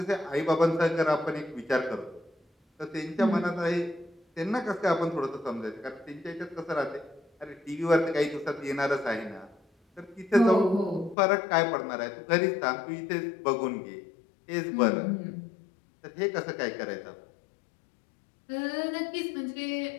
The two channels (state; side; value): drops out; right; at 11.2 s